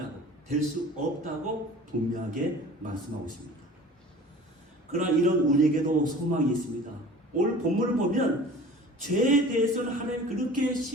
될 수 없다고 분명하게 말씀하고 있습니다. 그러나 이런 우리에게도 소망이 있습니다. 오늘 본문을 보면 죄에 대해서는 하나님 그렇게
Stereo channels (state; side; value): normal; both; correlation 0.43